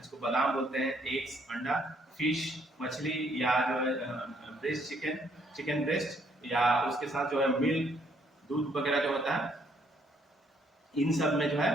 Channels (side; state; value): both; normal; correlation 0.68